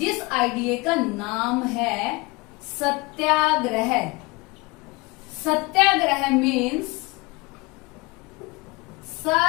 आइडिया का नाम है satyagraha. Satyagraha means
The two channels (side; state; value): right; quieter; 25.2 dB